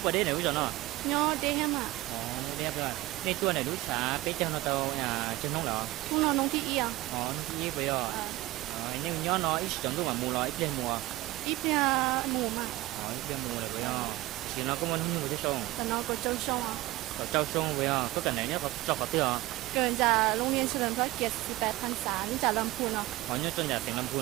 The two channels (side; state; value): left; quieter; 18.0 dB